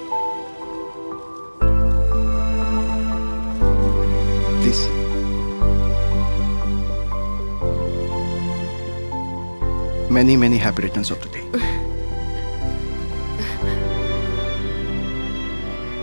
Please. Many, many happy returns of the day.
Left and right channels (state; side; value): inverted; both; correlation -1.00